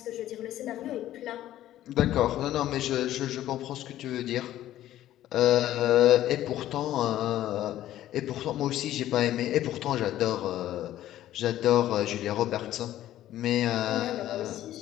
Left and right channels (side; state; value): right; quieter; 13.3 dB